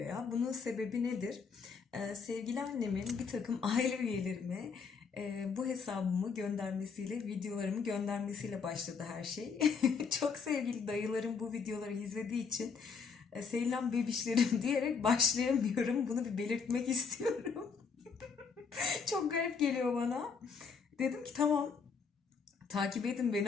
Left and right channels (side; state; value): right; quieter; 5.6 dB